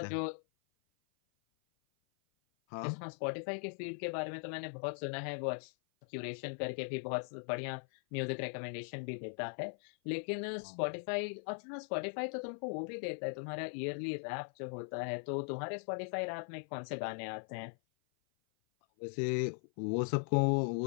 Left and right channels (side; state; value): right; silent; 52 dB below the other